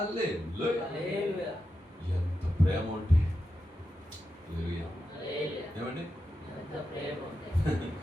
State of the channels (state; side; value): normal; both; correlation 0.88